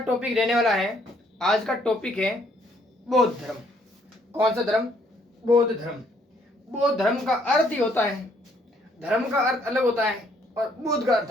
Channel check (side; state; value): both; normal; correlation 0.67